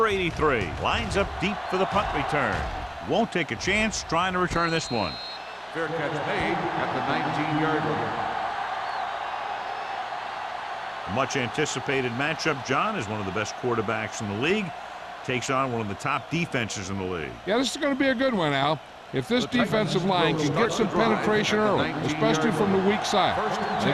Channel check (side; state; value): both; identical; correlation 1.00